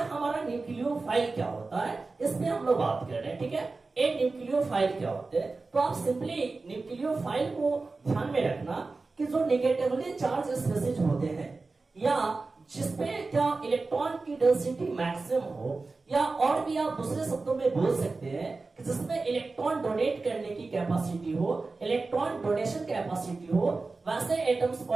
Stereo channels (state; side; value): quieter; left; 3.8 dB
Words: हमारा न्यूक्लियोफाइल क्या होता है इसमें हम लोग बात कर रहे हैं। ठीक है, एक न्यूक्लियोफाइल क्या होते हैं, तो आप सिंपली न्यूक्लियोफाइल को ध्यान में रखना कि जो नेगेटिवली चार्ज स्पेसीज होते हैं या जिसपे क्या इलेक्ट्रॉन की डेंसिटी मैक्सिमम हो, या और भी आप दूसरे शब्दों में बोल सकते हैं कि जिसमें इलेक्ट्रॉन डोनेट करने की कैपेसिटी हो, इलेक्ट्रॉन डोनेशन कैपेसिटी हो, वैसे एटम्स